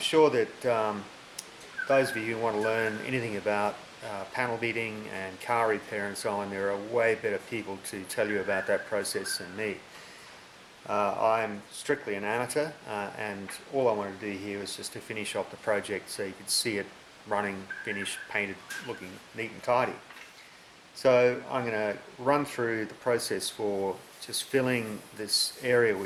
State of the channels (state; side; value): identical; both; correlation 1.00